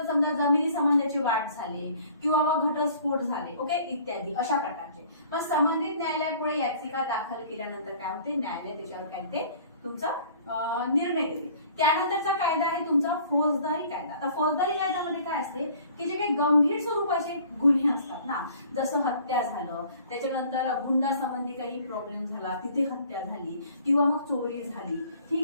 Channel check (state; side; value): inverted; both; correlation -0.52